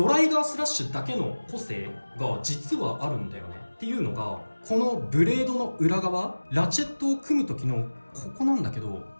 ライガースラッシュだけの個性が実はあるんだよね。っていうのがこのブレードの裏側、ラチェットを組む時のここなんだけど、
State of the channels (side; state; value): both; inverted; correlation -1.00